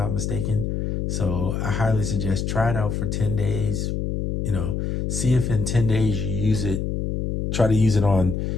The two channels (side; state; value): left; noise; hum, 1 dB below the sound